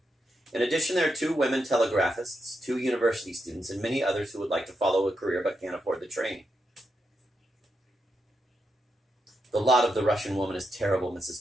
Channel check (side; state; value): both; normal; correlation 0.84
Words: In addition, there are 2 women telegraphists, 2 university students, and many others who would like to follow a career but can't afford the training. The lot of the Russian woman is terrible,